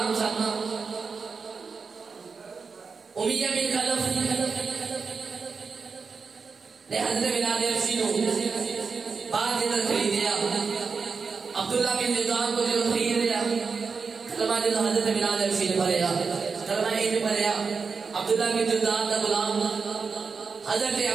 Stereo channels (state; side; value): quieter; left; 5.1 dB